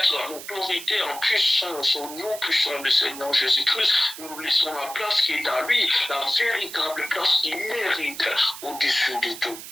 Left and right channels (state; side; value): noise; right; hiss, 12 dB below the sound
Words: en autorité, en puissance, au nom puissant du Seigneur Jésus-Christ. Nous nous laissons la place qui est à lui, la véritable place qu'il mérite au-dessus de tout.